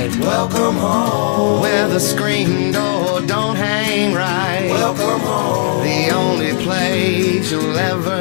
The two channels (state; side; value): silent; right; digital silence